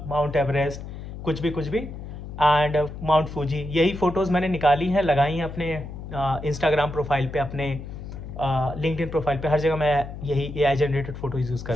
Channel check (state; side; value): noise; left; hum, 10 dB below the sound